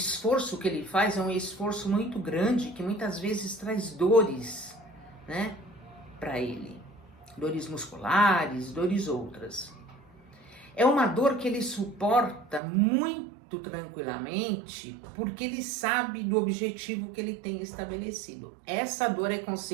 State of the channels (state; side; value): drops out; left; at 12.6 s